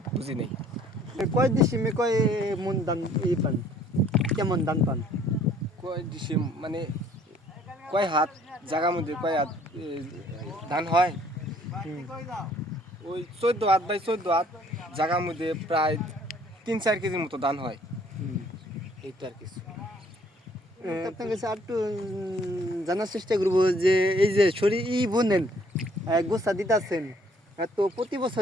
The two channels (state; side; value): normal; both; correlation 0.60